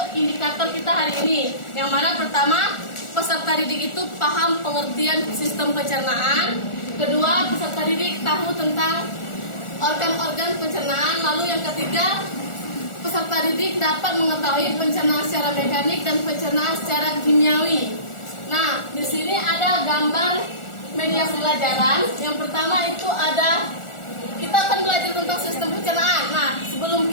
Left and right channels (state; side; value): late; right; 1.4 ms